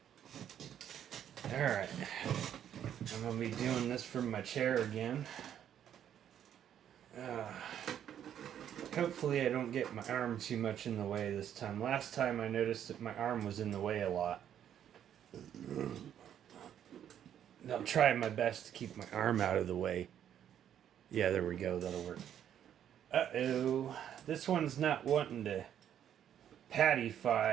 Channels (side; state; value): left; quieter; 9.9 dB